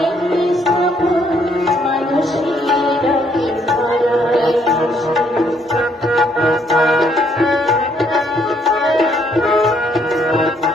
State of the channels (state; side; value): normal; both; correlation 0.69